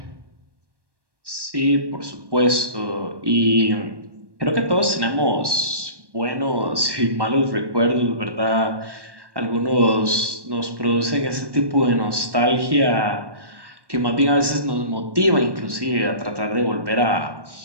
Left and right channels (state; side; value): late; left; 1.1 ms